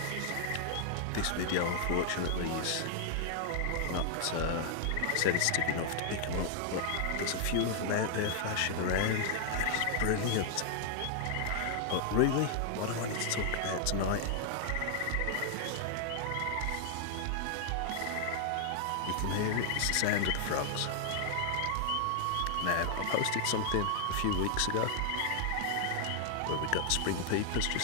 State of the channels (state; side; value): different; both; correlation 0.00